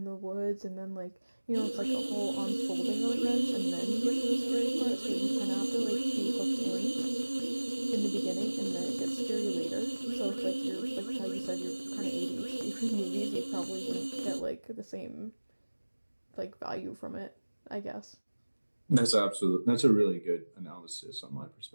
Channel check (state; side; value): inverted; both; correlation -1.00